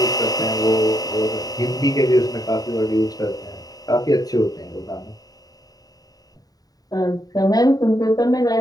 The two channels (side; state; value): right; late; 0.18 ms